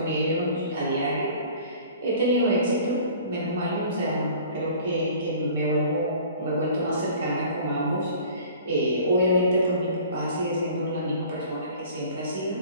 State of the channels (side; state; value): both; inverted; correlation -0.47